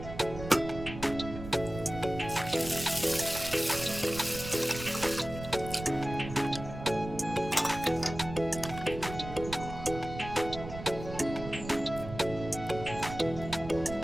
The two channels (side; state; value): right; noise; rumble, 10 dB below the sound